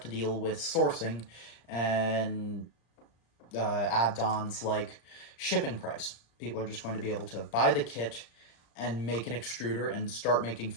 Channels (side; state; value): right; late; 35 ms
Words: deal with sourcing and add-ons like shipping price. People are just going to be able to buy the kit and make an extruder and start making